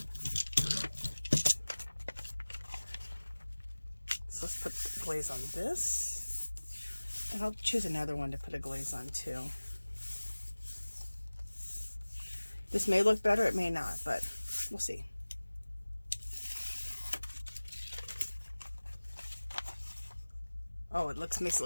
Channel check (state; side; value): inverted; both; correlation -1.00